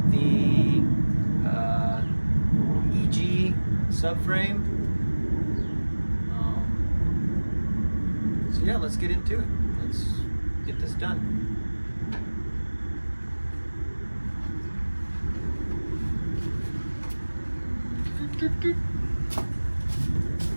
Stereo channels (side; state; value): both; inverted; correlation -1.00